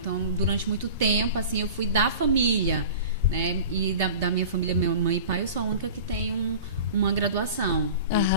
durante muito tempo, assim, eu fui da família, né? E da minha família, minha mãe e pai, eu sou a única que tem uma graduação.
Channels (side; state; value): both; inverted; correlation -0.38